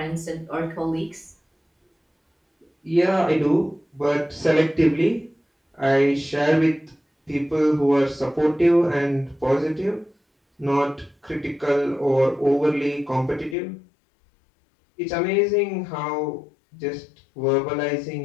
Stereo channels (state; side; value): drops out; right; at 13.6 s